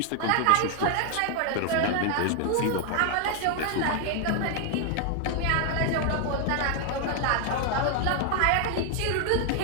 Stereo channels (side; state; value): both; different; correlation 0.00